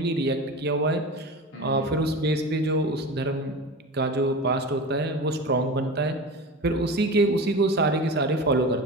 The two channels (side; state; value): both; normal; correlation 0.30